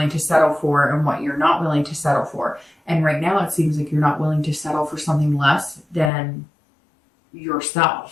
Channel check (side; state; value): right; drops out; at 6.1 s